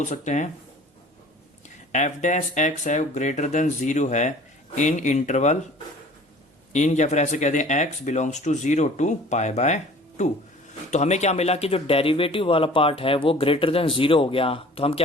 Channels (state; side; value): normal; both; correlation 0.48